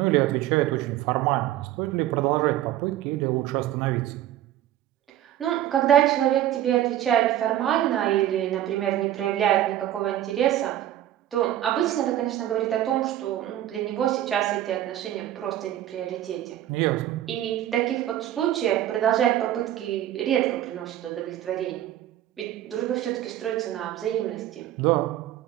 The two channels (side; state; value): left; quieter; 12.6 dB